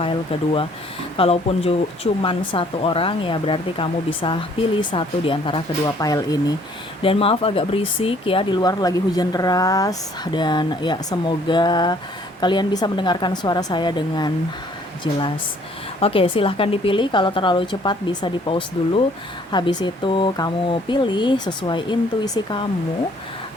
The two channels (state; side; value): normal; both; correlation 0.60